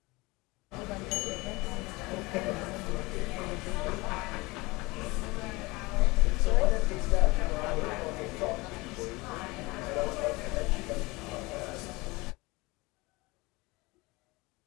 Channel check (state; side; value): quieter; right; 23.2 dB